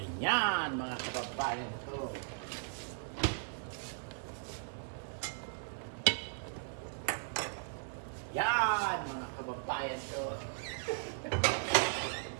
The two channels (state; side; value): silent; left; 53 dB below the other